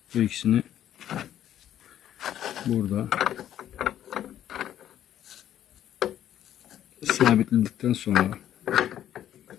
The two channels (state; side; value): quieter; right; 11.2 dB